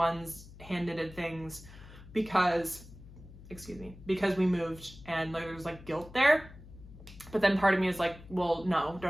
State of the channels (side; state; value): left; noise; hum, 18 dB below the sound